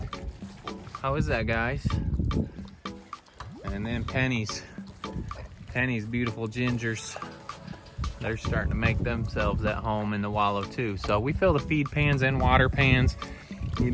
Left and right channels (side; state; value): both; identical; correlation 1.00